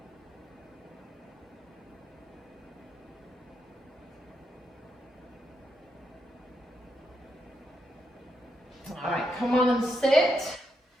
All right, come on and sit.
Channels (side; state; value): both; normal; correlation 0.82